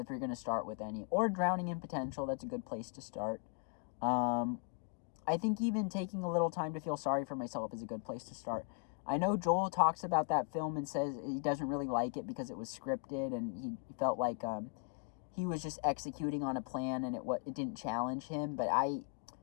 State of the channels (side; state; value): right; quieter; 38.3 dB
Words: you're going to start with any. Or Drowning in Potential, that's a good place to start. I think even taking a little time to feel sorry for myself is a good place to start. I know Joel talks about that film and says he doesn't really like it because it was scripted and he felt like he was just executing on a plan and it didn't challenge him. But I